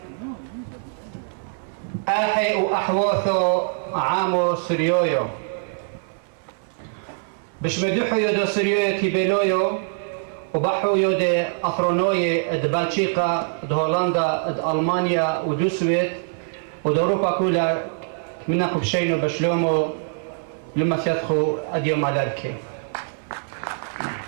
أحي وأحوثو عامو سريويو بش مدوحو يدو سريويو كيبيلويو وبحو يدو أفرونوي د بلجيكا د هولندا د ألمانيا ودو سويد ود أوروبا كلها منكم بشينو بشلومو لما سيدخو أديو مالاركي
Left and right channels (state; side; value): silent; left; 63 dB below the other